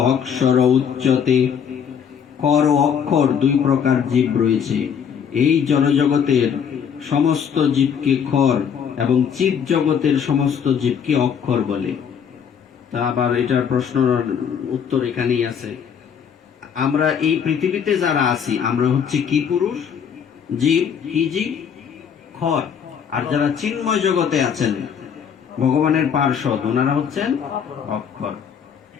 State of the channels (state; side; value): quieter; right; 7.6 dB